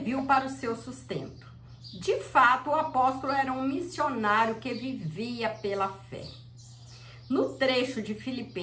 para o seu sustento. De fato, o apóstolo era um missionário que vivia pela fé. No trecho de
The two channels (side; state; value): both; identical; correlation 1.00